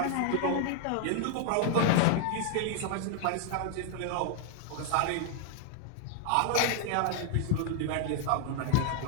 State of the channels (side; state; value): both; different; correlation 0.00